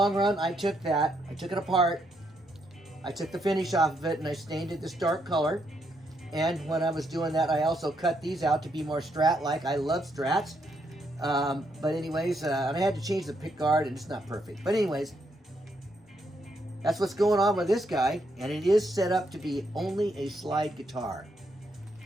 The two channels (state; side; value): normal; both; correlation 0.77